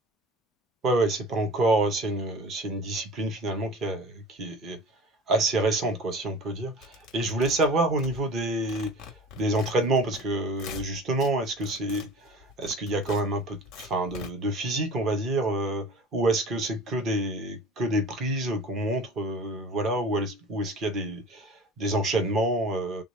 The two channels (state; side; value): normal; both; correlation 0.40